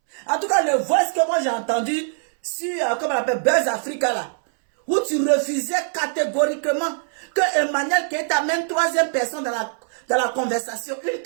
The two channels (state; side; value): silent; left; 64 dB below the other